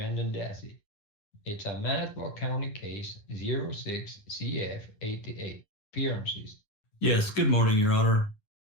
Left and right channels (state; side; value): late; right; 9.7 ms